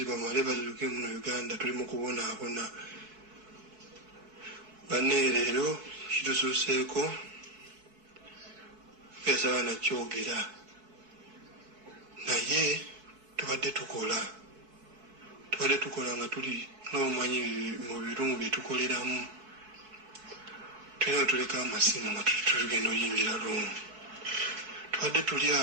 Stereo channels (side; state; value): left; late; 4.6 ms